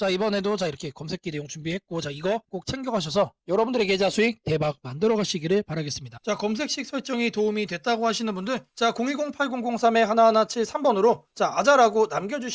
이번에도 자, 이렇게 검색기 내용 준비했고 자, 이거 꼭 챙겨가셔서 여러분들의 계좌 수익 대박 만들어 가시기를 바라겠습니다. 자, 검색식 설정이 도움이 됐다고 하시는 분들 자, 010-8003-1173번으로 자, 아자라고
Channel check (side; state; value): both; identical; correlation 1.00